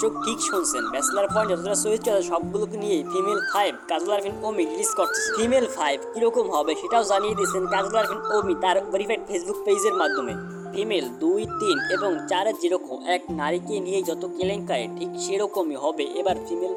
ঠিক শুনছেন, ব্যাচেলার পয়েন্ট যতটা চরিত্র আছে সবগুলোকে নিয়ে ফিমেল 5 কাজল আরফিন ওমি রিলিজ করতেছে। ফিমেল 5 কিরকম হবে সেটাও জানিয়ে দিয়েছেন কাজল আরফিন ওমি তার ভেরিফাইড ফেসবুক পেজের মাধ্যমে। ফিমেল ২, ৩ এবং ৪ যেরকম এক নারীকে নিয়ে যত কেলেঙ্কারি, ঠিক সেরকমই হবে এবার ফিমেল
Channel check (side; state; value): both; identical; correlation 1.00